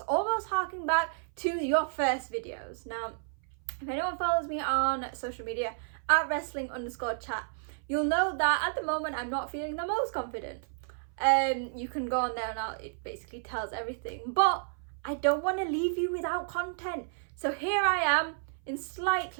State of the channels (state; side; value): silent; left; 57 dB below the other